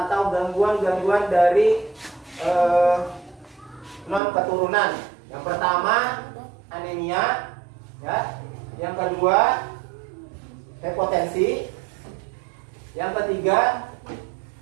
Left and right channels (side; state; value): left; drops out; at 4.2 s